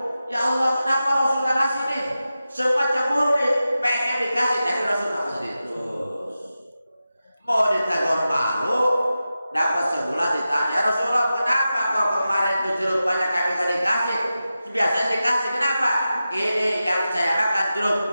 Ya Allah, kenapa Rasul gak kasih nih? Semua cemburu nih, pengen dikasih, tapi Rasul makan sendiri. Terus mau ditegur malu, dapat sebulan ditanya, Rasulullah kenapa kok kemarin itu jeruk banyak kami gak dikasih? Biasanya dikasih, kenapa? Ini yang saya makan jeruk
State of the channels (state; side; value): inverted; both; correlation -0.92